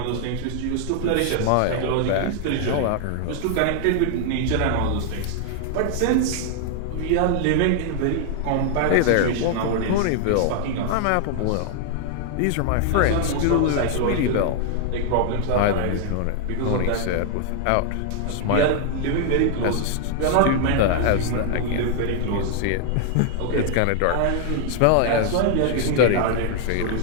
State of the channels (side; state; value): both; different; correlation 0.00